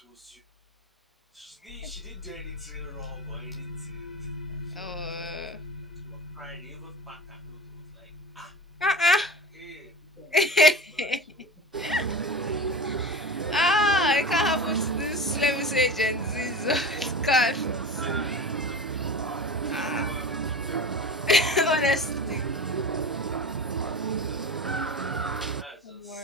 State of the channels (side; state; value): both; normal; correlation 0.32